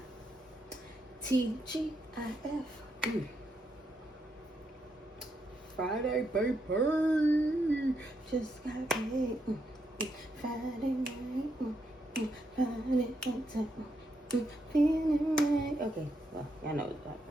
TGIF. Friday, baby. Just got paid. Friday night. Friday night. Feeling right. Okay, well, y'all know what I'm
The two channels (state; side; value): normal; both; correlation 0.80